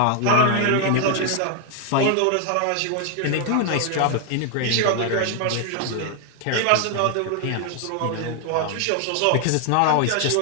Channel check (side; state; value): both; different; correlation 0.00